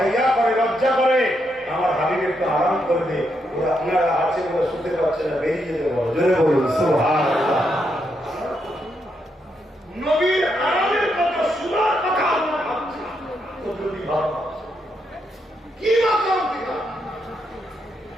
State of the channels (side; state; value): both; normal; correlation 0.80